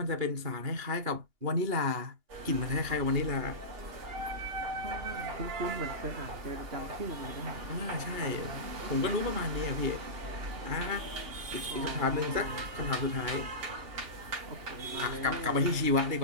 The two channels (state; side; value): late; left; 2.8 ms